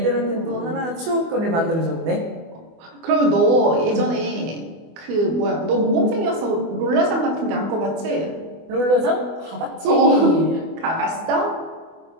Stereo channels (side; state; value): left; late; 24 ms